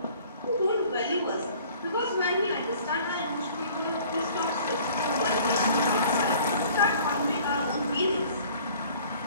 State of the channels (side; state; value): both; inverted; correlation -0.52